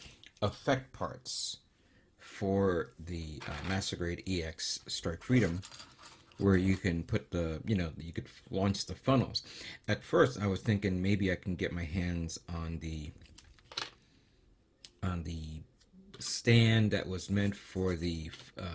effect parts for the Master Grade EX Strike Freedom, where you can put you could launch the funnels. At first, I was thinking maybe I can get my hands on the stand that was meant for the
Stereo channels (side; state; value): both; identical; correlation 1.00